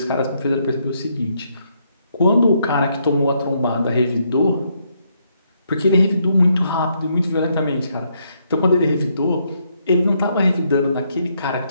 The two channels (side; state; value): both; inverted; correlation -0.74